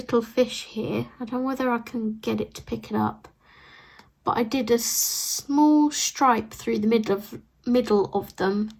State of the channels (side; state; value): both; identical; correlation 1.00